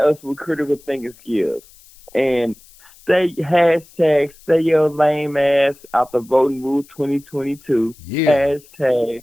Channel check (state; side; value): noise; left; hiss, 26 dB below the sound